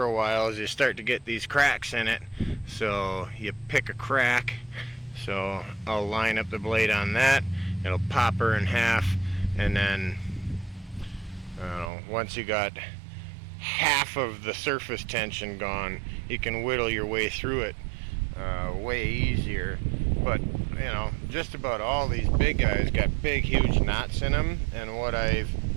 a while is you start to get these cracks in it. So you pick a crack. So I'll line up the blade on that. It'll pop her in half, and then once you got half of the surface tension gone, you can whittle your way through it way easier. But you know, just about all these big guys got big huge knots in them, and what I've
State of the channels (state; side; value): drops out; left; at 11.9 s